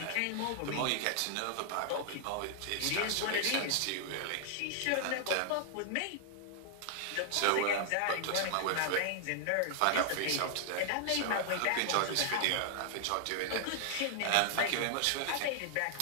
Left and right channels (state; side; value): different; both; correlation 0.00